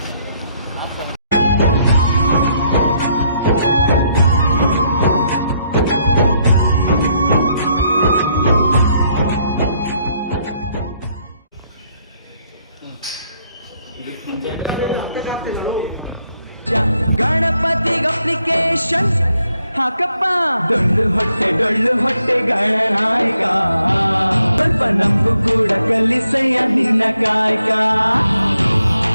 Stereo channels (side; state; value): both; inverted; correlation -0.73